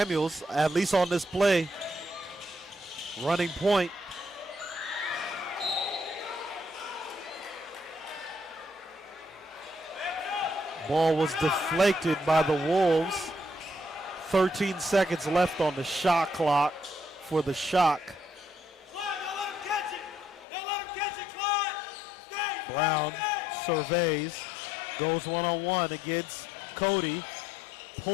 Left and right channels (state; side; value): drops out; right; at 20.5 s